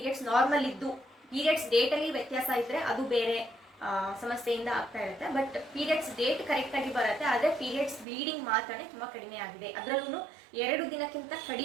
ನಾರ್ಮಲ್ ಇದ್ದು ಪೀರಿಯಡ್ಸ್ ಡೇಟ್ ಅಲ್ಲಿ ವ್ಯತ್ಯಾಸ ಇದ್ರೆ ಅದು ಬೇರೆ ಸಮಸ್ಯೆಯಿಂದ ಆಗ್ತಾ ಇರುತ್ತೆ. ಬಟ್ ಪೀರಿಯಡ್ಸ್ ಡೇಟ್ ಕರೆಕ್ಟ್ ಆಗಿ ಬರುತ್ತೆ, ಆದ್ರೆ ಪೀರಿಯಡ್ಸ್ ಬ್ಲೀಡಿಂಗ್ ಮಾತ್ರನೇ ತುಂಬಾ ಕಡಿಮೆ ಆಗಿದೆ, ಅದರಲ್ಲೂ 2 ದಿನಕ್ಕಿಂತ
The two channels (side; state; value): left; drops out; at 8.1 s